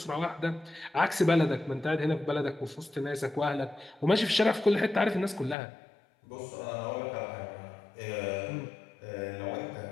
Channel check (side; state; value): right; drops out; at 5.6 s